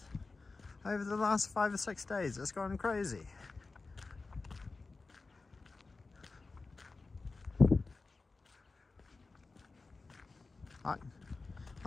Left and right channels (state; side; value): quieter; right; 3.9 dB